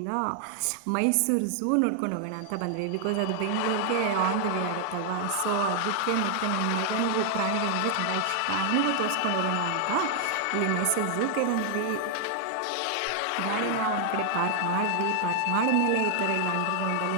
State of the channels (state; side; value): different; both; correlation 0.00